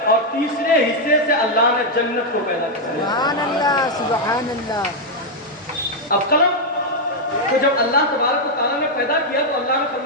اور تیسرے حصے سے اللہ نے جنت کو پیدا کیا. سبحان اللہ, سبحان اللہ. اب قلم تو جب اللہ تبارک و تعالیٰ نے پیدا کیا تو اللہ نے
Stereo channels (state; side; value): normal; both; correlation -0.01